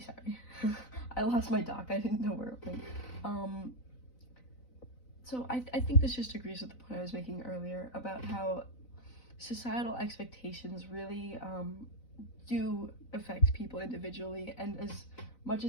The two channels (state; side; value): late; right; 4.0 ms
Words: I lost my doc. I didn't know where it went. So I think this just agrees with the point I was making earlier about how societal expectations really do affect people individually, and as much